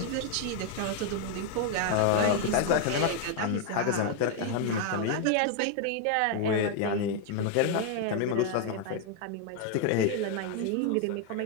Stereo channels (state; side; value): different; both; correlation 0.01